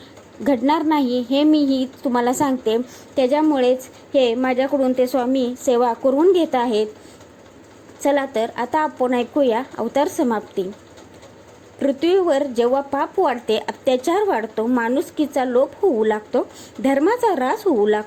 घडणार नाही, हे मीही तुम्हाला सांगते। त्याच्यामुळेच हे माझ्याकडून ते स्वामी सेवा करून घेत आहेत। चला तर आता आपण ऐकूया अवतार समाप्ती। पृथ्वीवर जेव्हा पाप वाढते, अत्याचार वाढतो, माणुसकीचा लोप होऊ लागतो, धर्माचा ऱ्हास होऊ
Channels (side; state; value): both; identical; correlation 1.00